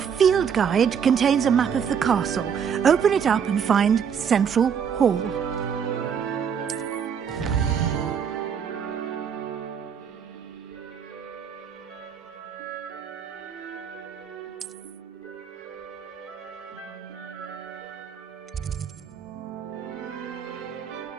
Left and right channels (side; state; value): left; quieter; 7.4 dB